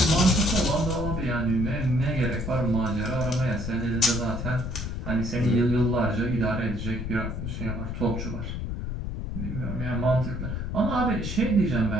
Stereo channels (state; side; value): noise; left; rumble, 4 dB below the sound